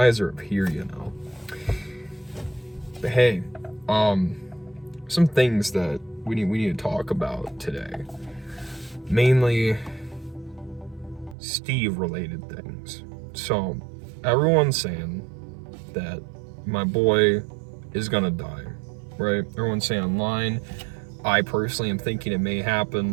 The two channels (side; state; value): left; drops out; at 11.4 s